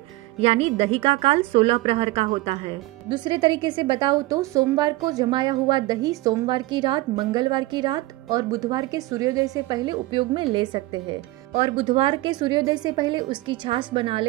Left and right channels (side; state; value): left; quieter; 19.0 dB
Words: यानी दही का काल 16 प्रहर का होता है। दूसरे तरीके से बताऊं तो सोमवार को जमाया हुआ दही सोमवार की रात, मंगलवार की रात और बुधवार के सूर्योदय से पहले उपयोग में ले सकते हैं, और बुधवार के सूर्योदय से पहले उसकी छाछ बना